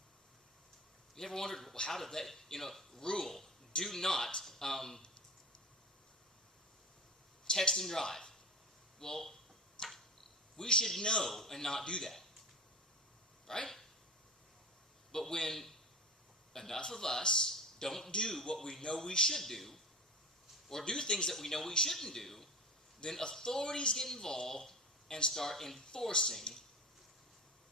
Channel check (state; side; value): normal; both; correlation 0.35